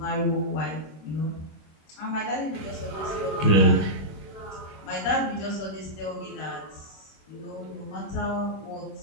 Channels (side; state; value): right; late; 26 ms